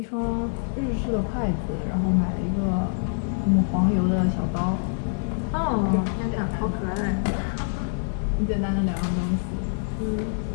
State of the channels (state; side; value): silent; right; digital silence